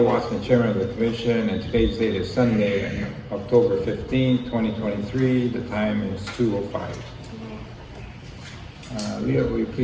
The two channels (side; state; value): both; identical; correlation 1.00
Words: Watson, Chairman of the Commission, and today's date is Sunday, October 15, 2023. The time is 2:05. Leah, will you